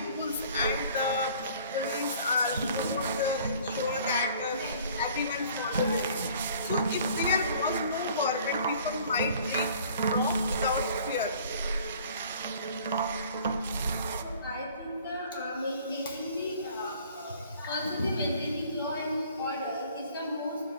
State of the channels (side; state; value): both; inverted; correlation -0.52